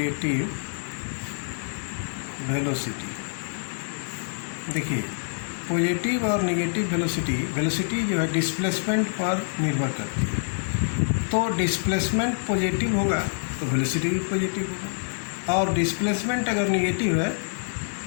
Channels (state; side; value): silent; right; digital silence